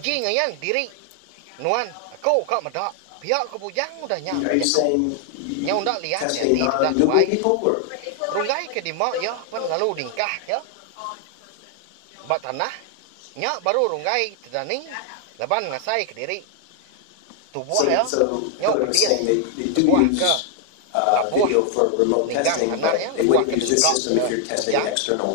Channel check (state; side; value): different; both; correlation 0.00